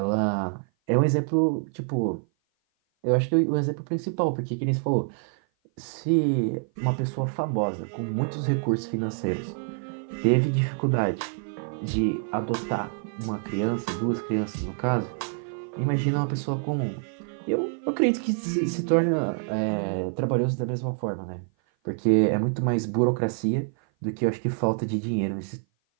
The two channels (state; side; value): silent; left; 56 dB below the other